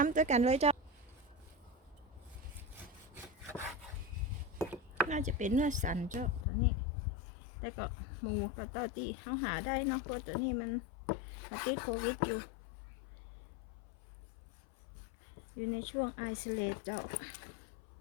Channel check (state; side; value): drops out; right; at 6.5 s